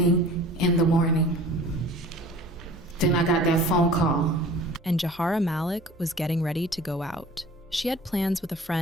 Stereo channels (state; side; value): normal; both; correlation 0.45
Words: in the morning." Then I got that phone call. And Jahara Malik was getting ready to go out. She had plans with a